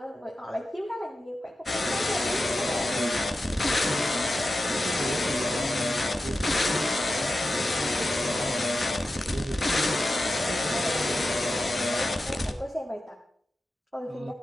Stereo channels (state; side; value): normal; both; correlation 0.92